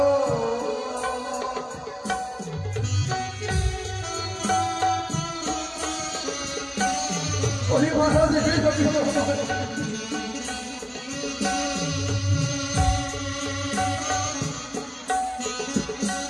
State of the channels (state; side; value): identical; both; correlation 1.00